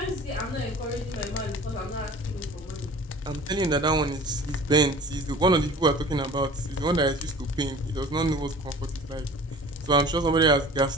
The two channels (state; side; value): normal; both; correlation 0.43